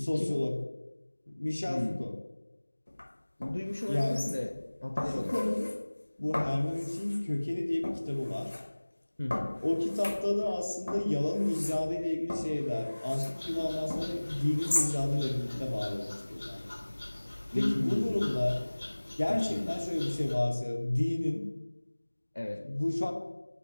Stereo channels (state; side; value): inverted; both; correlation -1.00